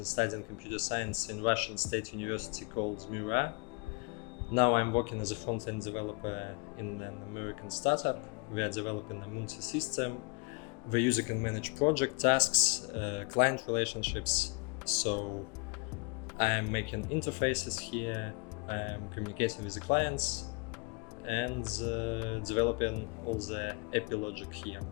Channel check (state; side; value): quieter; right; 31.7 dB